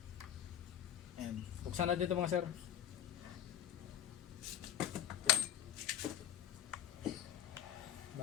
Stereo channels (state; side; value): quieter; right; 10.6 dB